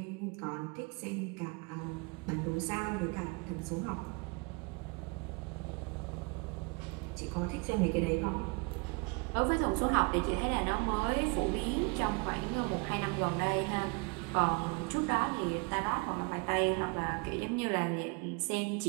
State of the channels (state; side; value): quieter; left; 30.6 dB